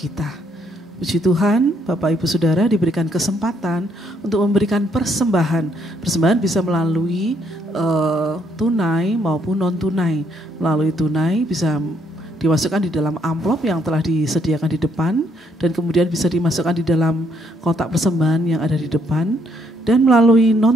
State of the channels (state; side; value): normal; both; correlation 0.71